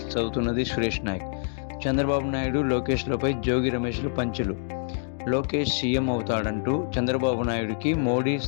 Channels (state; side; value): silent; right; digital silence